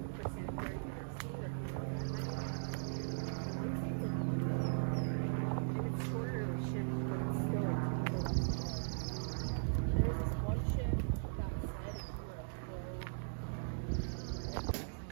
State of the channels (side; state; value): left; silent; digital silence